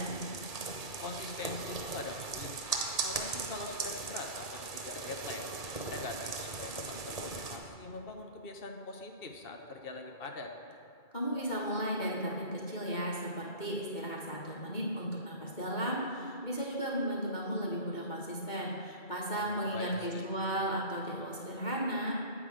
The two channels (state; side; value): late; right; 2.3 ms